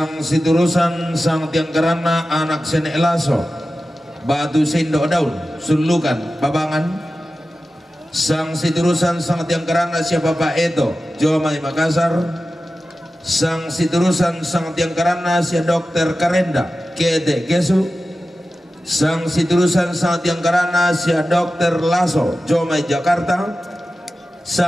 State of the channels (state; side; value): normal; both; correlation 0.94